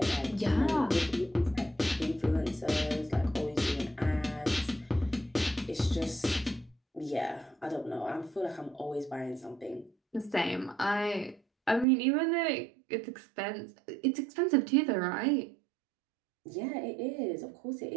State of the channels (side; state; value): left; drops out; at 11.9 s